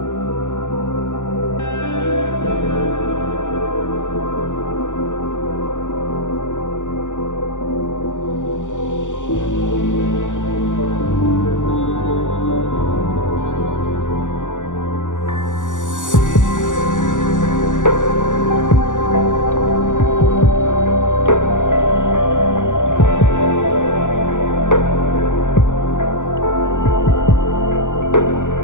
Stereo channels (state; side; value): late; right; 0.86 ms